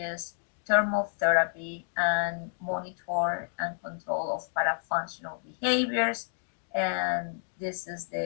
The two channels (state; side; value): silent; right; digital silence